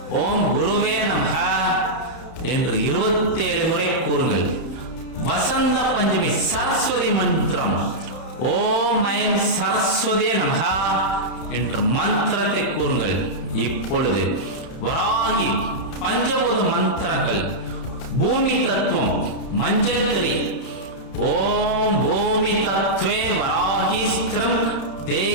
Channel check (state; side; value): late; right; 31 ms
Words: ஓம் குருவே நமக என்று 27 முறை கூறுங்கள். வசந்த பஞ்சமி சரஸ்வதி மந்திரம் ஓம் ஐம் சரஸ்வதியே நமக என்று மந்திரத்தை கூறுங்கள். இப்பொழுது வராகி பஞ்சபூத மந்திரங்கள். பூமி தத்துவம் மஞ்சள் திரி ஓம் பூமி தத்வே வராகி ஸ்திரம்